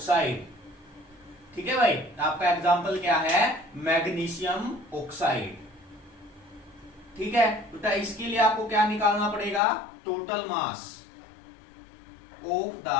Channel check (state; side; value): drops out; right; at 9.6 s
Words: ठीक है भाई, आपका एग्जांपल क्या है, मैग्नीशियम ऑक्साइड। ठीक है, बेटा इसके लिए आपको क्या निकालना पड़ेगा, total mass of the